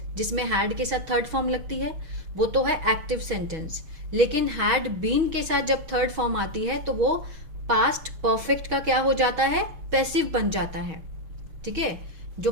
जिसमें हैड के साथ थर्ड फॉर्म लगती है, वो तो है एक्टिव सेंटेंस। लेकिन हैड बीन के साथ जब थर्ड फॉर्म आती है तो वो पास्ट परफेक्ट का क्या हो जाता है, पैसिव बन जाता है। ठीक है, जो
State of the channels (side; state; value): left; late; 6.3 ms